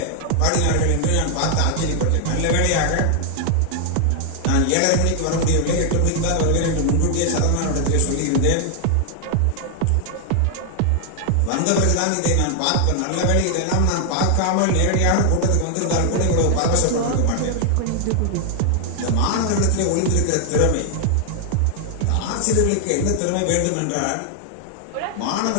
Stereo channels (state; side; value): different; both; correlation 0.00